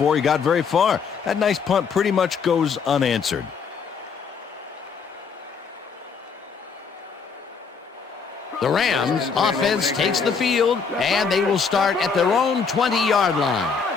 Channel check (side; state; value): right; quieter; 5.7 dB